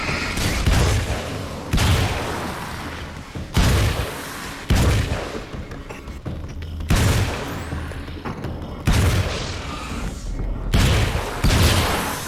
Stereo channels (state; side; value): identical; both; correlation 1.00